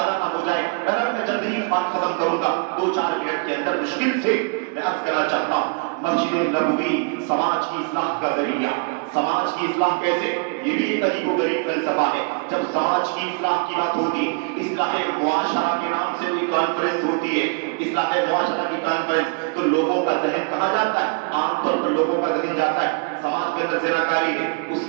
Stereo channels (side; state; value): left; quieter; 37.0 dB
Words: نہ ہو جائے، میں جلدی ہی بات ختم کروں گا۔ 2-4 منٹ کے اندر مشکل سے میں عرض کرنا چاہتا ہوں، مسجد نبوی سماج کی اصلاح کا ذریعہ، سماج کی اصلاح کیسے؟ یہ بھی ایک عجیب و غریب فلسفہ ہے۔ جب سماج کی اصلاح کی بات ہوتی ہے، اصلاح معاشرہ کے نام سے کوئی کانفرنس ہوتی ہے، اصلاح معاشرہ کی کانفرنس، تو لوگوں کا ذہن کہاں جاتا ہے؟ عام طور پر لوگوں کا ذہن جاتا ہے سماج کے اندر زناکاری ہے، اس